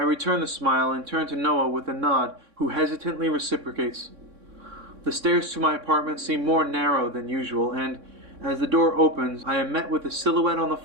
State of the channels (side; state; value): left; late; 3.6 ms